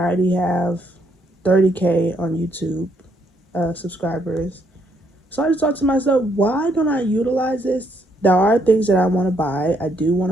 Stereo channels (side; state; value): both; normal; correlation 0.72